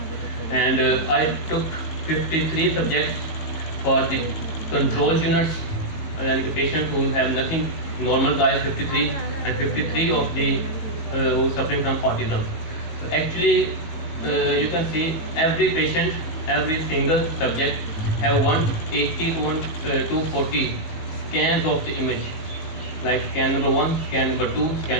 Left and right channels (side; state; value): right; late; 19 ms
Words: And I took 53 subjects for the control units, and the patients who have nothing, normal guys 53, and 53 of the who suffering from autism. So actually, you can see every patient, every single subject have 180 to 240 scans of the image, like scan number 1, scan number 2,